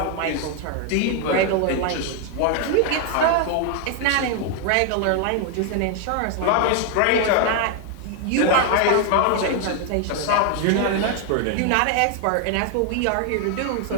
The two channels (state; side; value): different; both; correlation 0.00